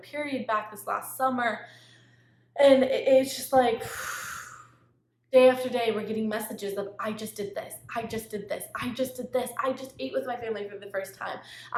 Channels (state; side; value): identical; both; correlation 1.00